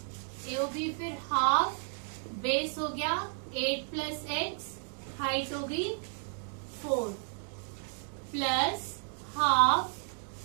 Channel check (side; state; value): left; silent; 56 dB below the other